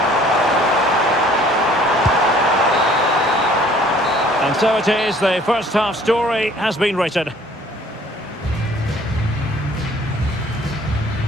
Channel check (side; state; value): both; normal; correlation 0.55